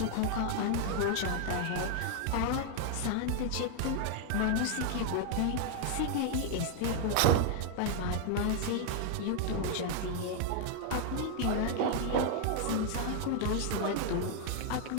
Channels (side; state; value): both; different; correlation 0.00